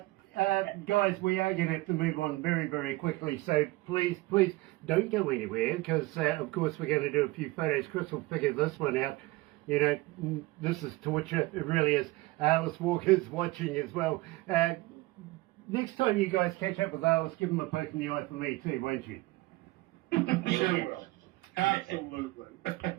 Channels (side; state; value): left; quieter; 20.9 dB